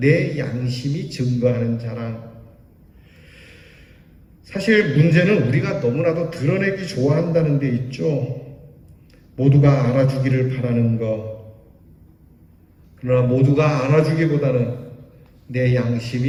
양심이 증거하는 자랑. 사실 문제는 우리가 너무나도 드러내기 좋아한다는 데 있죠. 모두가 알아주기를 바라는 것. 그러나 모두가 알아주기보다는 내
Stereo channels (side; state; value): both; identical; correlation 1.00